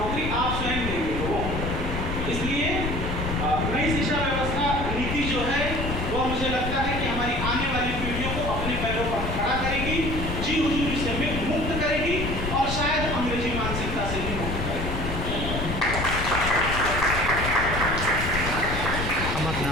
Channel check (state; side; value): noise; left; rumble, 4 dB below the sound